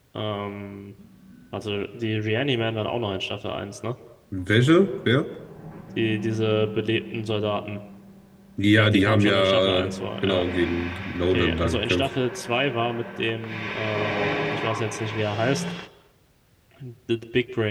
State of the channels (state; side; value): identical; both; correlation 1.00